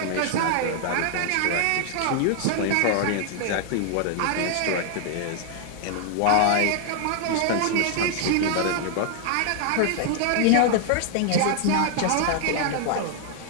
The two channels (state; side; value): different; both; correlation 0.00